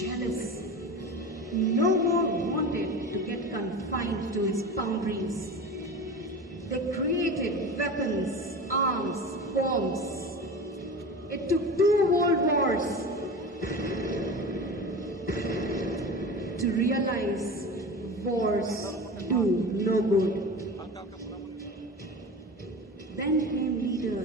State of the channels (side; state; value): both; normal; correlation 0.30